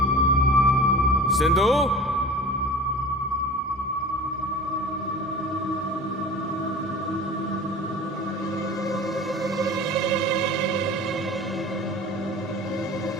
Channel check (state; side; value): normal; both; correlation 0.38